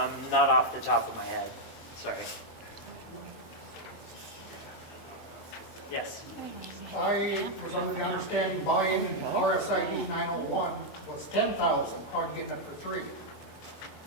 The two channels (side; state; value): right; late; 24 ms